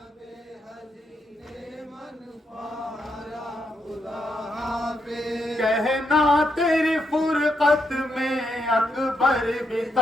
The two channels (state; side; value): normal; both; correlation 0.81